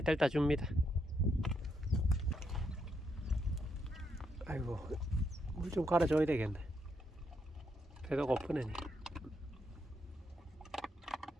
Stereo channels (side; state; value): both; normal; correlation 0.78